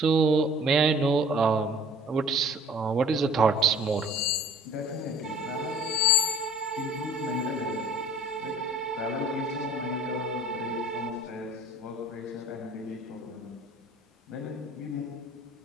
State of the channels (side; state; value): both; normal; correlation 0.50